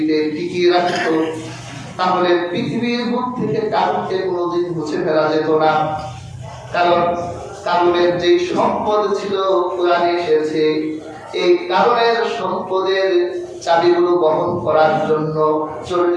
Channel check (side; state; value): both; identical; correlation 1.00